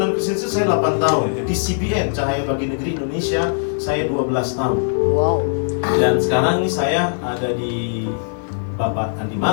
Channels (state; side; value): silent; right; 55 dB below the other